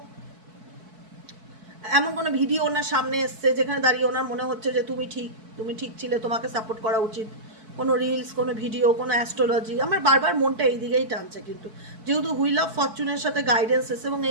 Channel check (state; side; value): late; left; 4.6 ms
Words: এমন কোনো ভিডিও ওনার সামনে এসছে যেখানে দাঁড়িয়ে ওনার মনে হচ্ছে যে তুমি ঠিক ছিলে, তোমাকে সাপোর্ট করা উচিত। কোনো রিলস, কোনো ভিডিও, কোনো অ্যাস্ট্রোলজি, আমার বারবার মনটা এই দিকেই টানছে, কিন্তু যেহেতু হুইল অফ ফরচুনের সাথে গাইডেন্স এসে, এবং